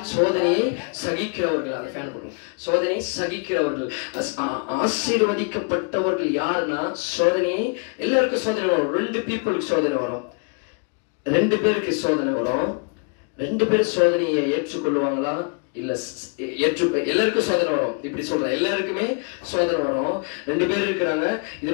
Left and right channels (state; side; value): quieter; right; 37.7 dB